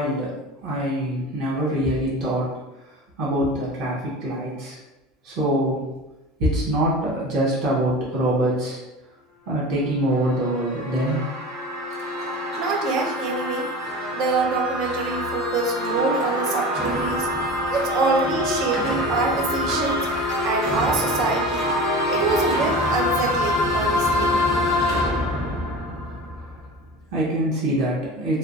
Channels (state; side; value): normal; both; correlation 0.33